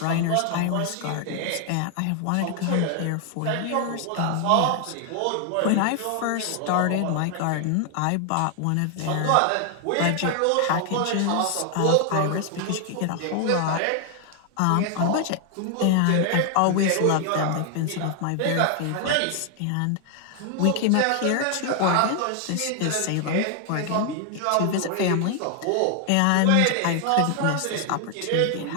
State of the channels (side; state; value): both; different; correlation 0.00